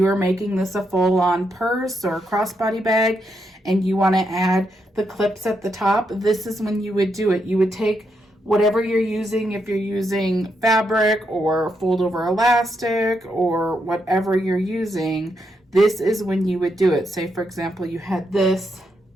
are making this a full-on purse or crossbody bag and you want to add the clips at the top, this is when you would do it. You would take whatever you're using, if you're using fabric or fold over elastic or whatever you're using, this is when you would do it. Say, for example, you had this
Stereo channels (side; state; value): both; normal; correlation 0.81